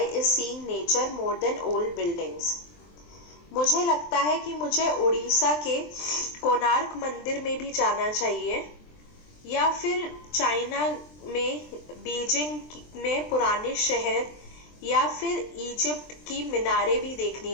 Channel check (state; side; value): late; right; 23 ms